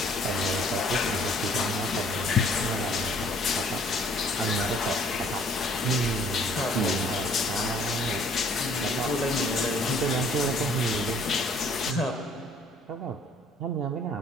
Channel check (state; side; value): normal; both; correlation 0.58